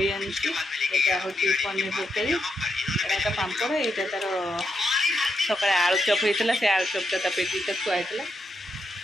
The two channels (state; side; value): normal; both; correlation 0.83